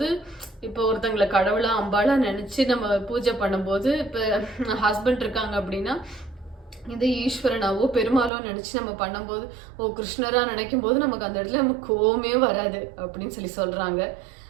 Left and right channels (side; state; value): left; drops out; at 8.3 s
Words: இப்போ ஒருத்தங்களை கடவுளா அம்பாளா நினைச்சு நம்ம பூஜை பண்ணும்போது, இப்போ ஹஸ்பண்ட் இருக்காங்க அப்படின்னா இது ஈஸ்வரனாவோ பெருமாளோ நினைச்சு நம்ம பண்ணும்போது, கிருஷ்ணரா நினைக்கும் போது நமக்கு அந்த இடத்துல நமக்கு கோவமே வராது அப்படின்னு சொல்லி சொல்றாங்க.